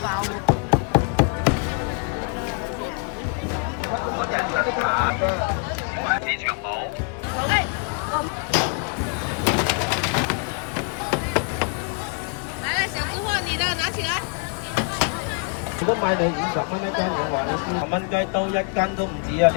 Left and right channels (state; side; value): quieter; right; 39.7 dB